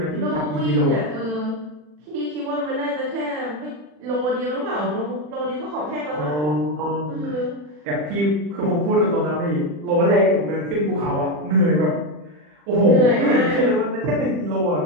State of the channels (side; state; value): left; late; 40 ms